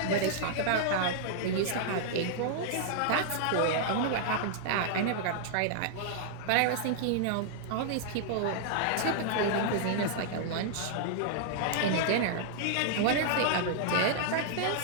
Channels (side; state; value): both; different; correlation -0.01